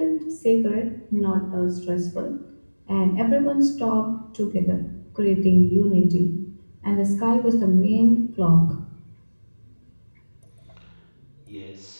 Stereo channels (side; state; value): both; inverted; correlation -1.00